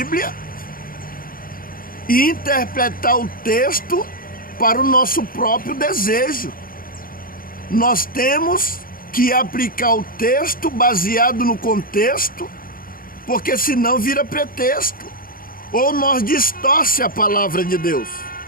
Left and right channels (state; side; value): late; right; 0.41 ms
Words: e interpretar o texto para o nosso próprio desejo. Nós temos que aplicar o texto baseado no contexto, porque senão vira pretexto, ou nós distorce a palavra de Deus.